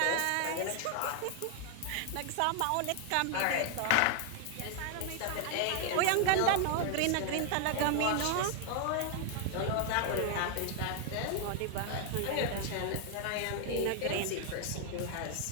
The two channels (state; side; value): different; both; correlation 0.00